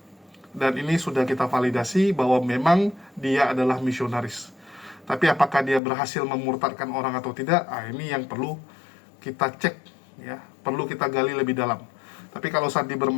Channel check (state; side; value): drops out; right; at 5.8 s